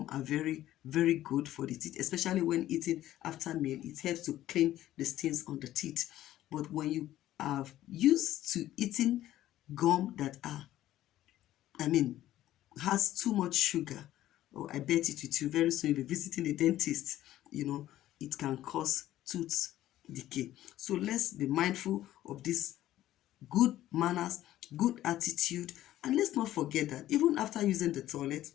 are very, very good for the teeth, especially when eating after meal. It helps to clean the stains on the teeth. But when you are used to eating gum that has too much sugar, I bet it with you very soon you'll be visiting a dentist. It can cause tooth decay. So let's be mindful of this good manners, good attitude, and let's not forget that even after using the toilet,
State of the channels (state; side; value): quieter; right; 13.7 dB